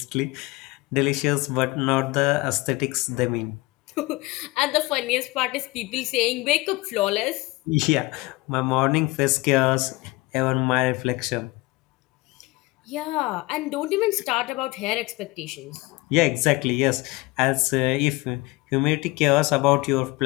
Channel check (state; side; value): quieter; right; 22.3 dB